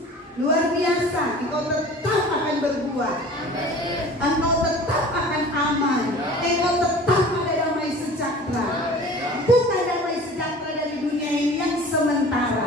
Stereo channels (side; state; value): both; normal; correlation 0.42